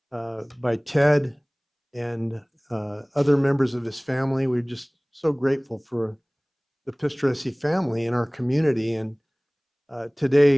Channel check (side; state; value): both; identical; correlation 1.00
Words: by Ted and other members of his family. We're just so grateful for the Pistoresi family in our community. And